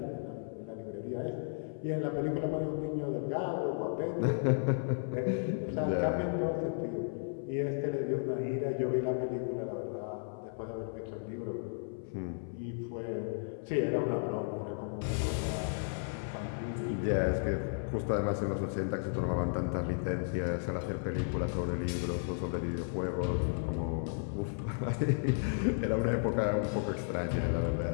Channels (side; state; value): right; silent; 55 dB below the other